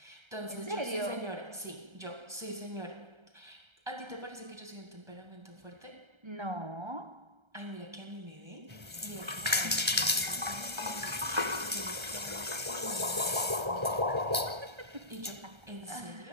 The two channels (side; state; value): left; late; 1.3 ms